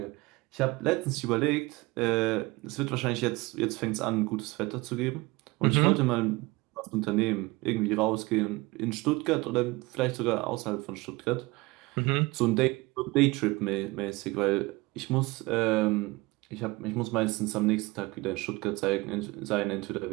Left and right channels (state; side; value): quieter; left; 22.5 dB